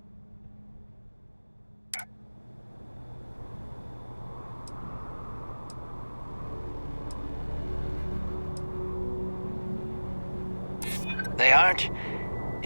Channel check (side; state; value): both; inverted; correlation -1.00